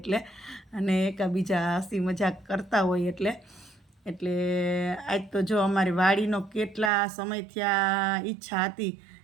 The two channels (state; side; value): drops out; left; at 6.9 s